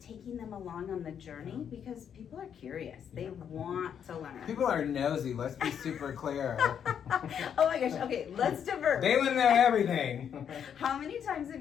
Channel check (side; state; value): right; quieter; 8.3 dB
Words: them along on the journey, because people are curious. They want to learn. People are nosy, let's be super clear. Oh my gosh, okay, let's divert. They want to know everything. How many times have